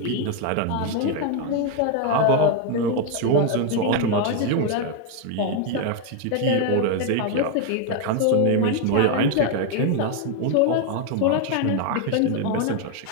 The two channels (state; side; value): different; both; correlation 0.01